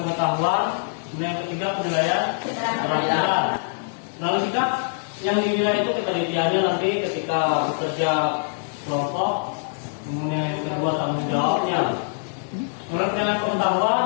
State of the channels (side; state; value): right; silent; digital silence